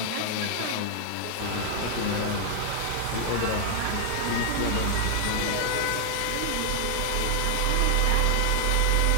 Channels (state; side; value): different; both; correlation 0.00